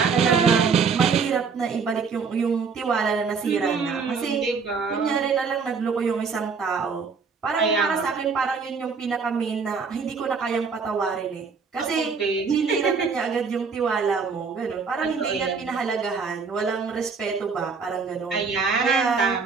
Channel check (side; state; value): left; quieter; 5.4 dB